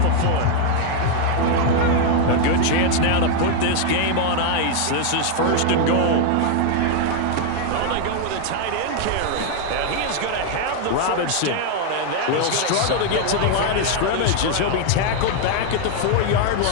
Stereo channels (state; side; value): different; both; correlation 0.00